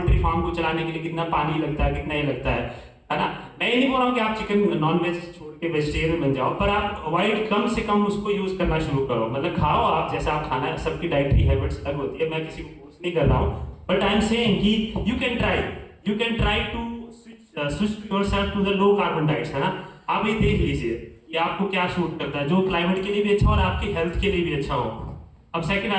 फार्म को चलाने के लिए कितना पानी लगता है, कितना ये लगता है ना। मैं ये नहीं बोल रहा हूँ कि आप चिकन नॉन वेज छोड़ के वेजिटेरियन बन जाओ, पर आप अवॉइड कम से कम उसको यूज करना शुरू करो। मतलब खाओ आप जैसा आप खाना, सबकी डाइटरी हैबिट्स अलग होती है, मैं किसी को फोर्स नहीं कर रहा हूँ, बट आई एम सेइंग कि you can try to switch yourself to the low carbon diets, है ना। आप ये देख लीजिए कि आपको क्या सूट करता है, जो क्लाइमेट के लिए भी अच्छा हो और आपकी हेल्थ के लिए भी अच्छा हो। अब सेकंड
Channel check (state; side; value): identical; both; correlation 1.00